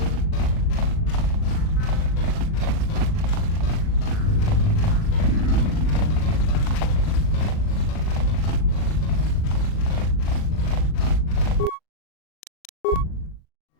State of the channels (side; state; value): right; late; 39 ms